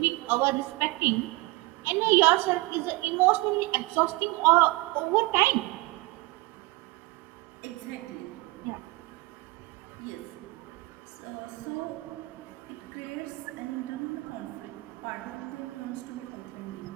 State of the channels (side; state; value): left; quieter; 23.0 dB